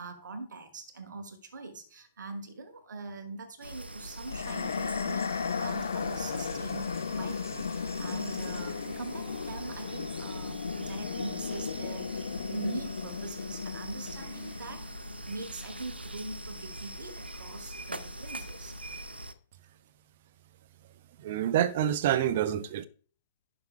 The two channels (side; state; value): both; inverted; correlation -0.58